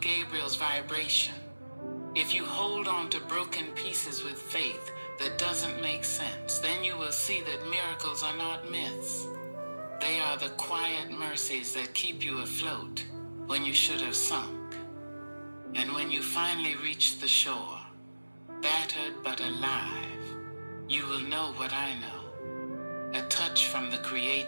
vibration, if you hold on to broken pieces with faith that doesn't make sense, then you will see that miracles are not myths. They are the quiet mercies that keep you afloat when you should have sunk. And when you finally reach the shore, battered but alive, you will know what I know. A touch from the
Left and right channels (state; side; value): inverted; both; correlation -1.00